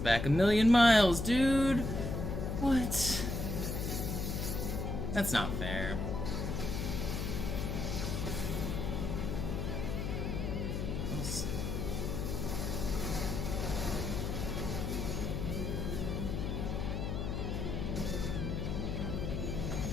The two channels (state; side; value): noise; left; hum, 2 dB below the sound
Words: 1,000,000 miles, dude! What? That's not fair.